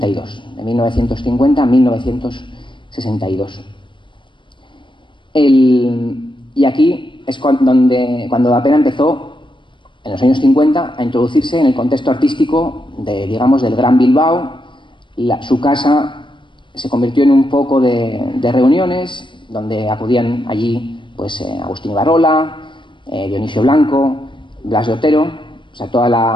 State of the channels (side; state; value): right; late; 0.24 ms